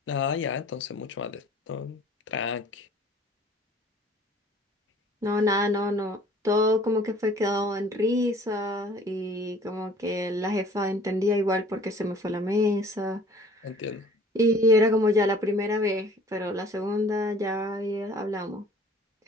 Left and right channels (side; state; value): both; normal; correlation 0.51